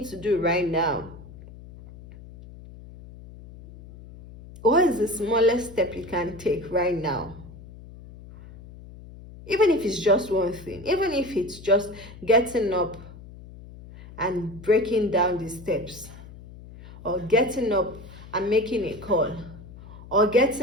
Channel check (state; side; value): noise; left; hum, 17 dB below the sound